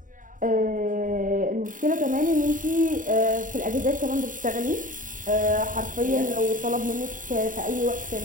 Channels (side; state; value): left; late; 0.38 ms